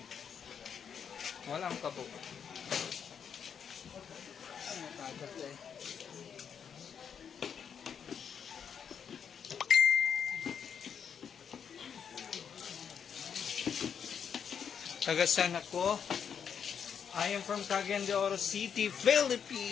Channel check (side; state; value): right; quieter; 7.5 dB